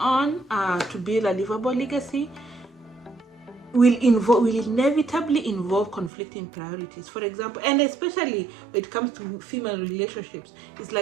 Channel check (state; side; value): drops out; left; at 6.1 s